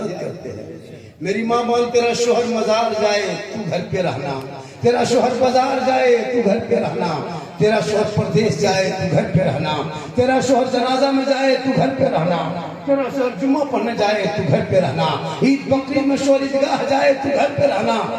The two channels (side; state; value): both; identical; correlation 1.00